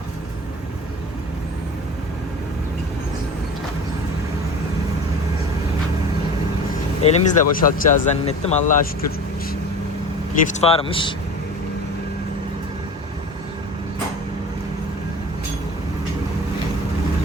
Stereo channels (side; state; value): both; normal; correlation 0.36